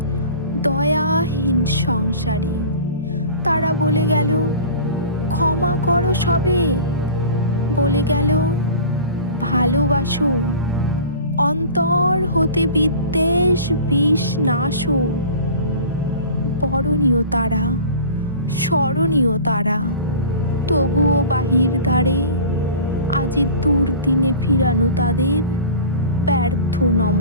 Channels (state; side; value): inverted; both; correlation -0.39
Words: দয়াহীন সংসারে। তারা বলে গেল ক্ষমা করো সবে, বলে গেল ভালোবাসো, অন্তর হতে বিদ্বেষ বিষ নাশো। বরণীয় তারা, স্মরণীয় তারা, তবুও বাহির দ্বারে আজি দুর্দিনে ফিরানো তাদের ব্যর্থ